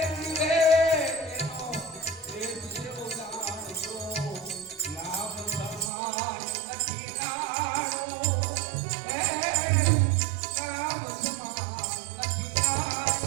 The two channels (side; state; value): left; drops out; at 5.9 s